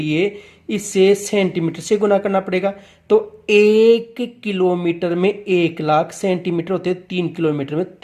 इसे सेंटीमीटर से गुना करना पड़ेगा। तो 1 किलोमीटर में 1,00,000 सेंटीमीटर होते हैं, 3 किलोमीटर में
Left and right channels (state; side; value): identical; both; correlation 1.00